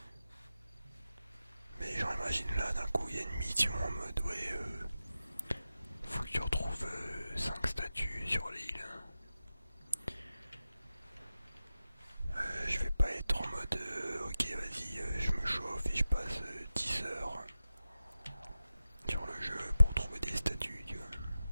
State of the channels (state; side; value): inverted; both; correlation -0.93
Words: Mais genre, imagine là, d'un coup, il y a une mission en mode, ouais, faut que tu retrouves 5 statues sur l'île. Je vais pas être en mode, ok, vas-y, je me chauffe et je passe 10 heures sur le jeu pour trouver des statues, tu vois.